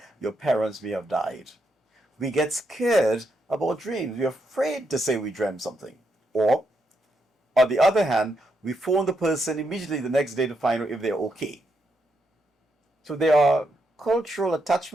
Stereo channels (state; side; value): normal; both; correlation 0.80